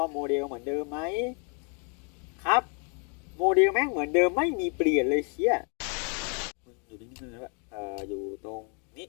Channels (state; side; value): quieter; right; 37.8 dB